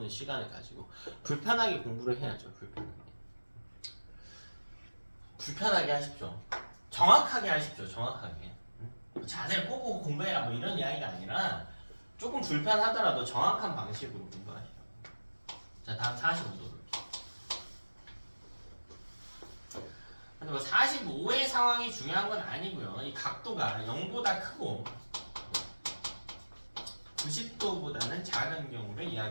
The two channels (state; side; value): inverted; both; correlation -1.00